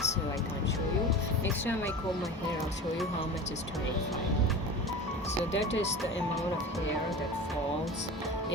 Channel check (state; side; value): normal; both; correlation 0.33